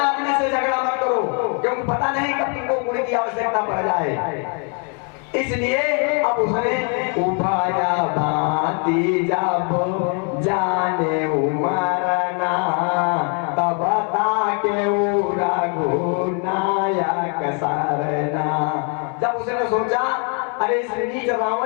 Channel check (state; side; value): quieter; right; 39.1 dB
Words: से झगड़ा मत करो, क्योंकि पता नहीं कब तुमको गुण की आवश्यकता पड़ जाए। इसलिए अब उसने उभाया भांति जब जाने उमरना, तब ताके रघुनायक सरना। जब उसने सोचा अरे इस नीच